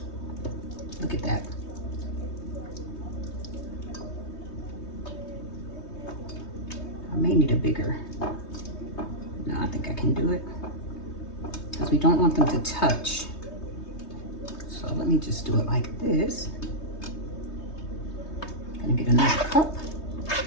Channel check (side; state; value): right; late; 3.2 ms